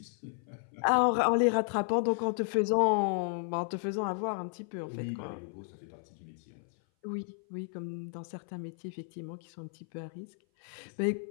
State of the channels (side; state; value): right; silent; 56 dB below the other